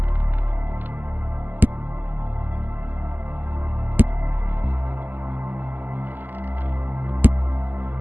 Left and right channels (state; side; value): late; left; 0.087 ms